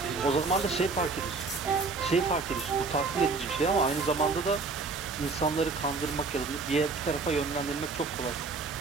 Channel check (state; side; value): quieter; left; 4.2 dB